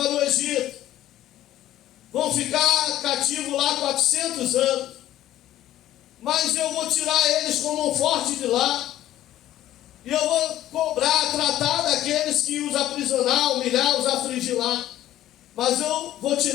o Egito. Vão ficar cativos lá 400 anos. Mas eu vou tirar eles como um forte de lá. E eu vou cobrar, tratar daqueles que os aprisionar, humilhar, os afligir lá. Mas eu vou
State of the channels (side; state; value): right; quieter; 13.3 dB